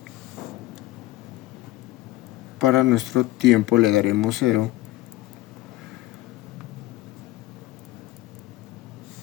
Para nuestro tiempo le daremos 0.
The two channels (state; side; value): quieter; right; 17.0 dB